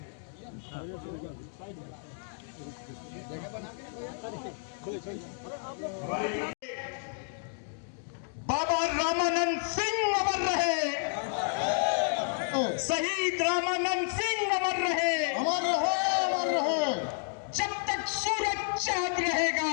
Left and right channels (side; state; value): right; silent; digital silence